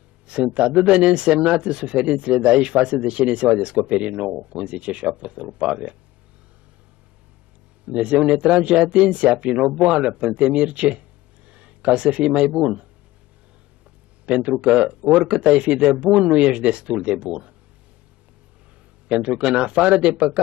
Sunt atât de neînsemnate suferințele de aici față de ce ne se va descoperi nouă, cum zice și Apostolul Pavel. Dumnezeu ne trage atenția prin o boală, prin temirce, ca să fii mai bun. Pentru că oricât ai fi de bun, nu ești destul de bun. Pentru că în afară de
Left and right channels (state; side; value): quieter; right; 17.3 dB